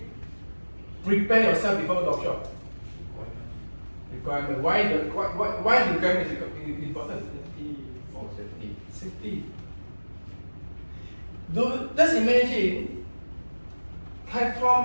prepare yourself before the offshore? Requirement. Why the requirement is important? For safety. Safety. Just imagine,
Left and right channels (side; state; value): both; inverted; correlation -1.00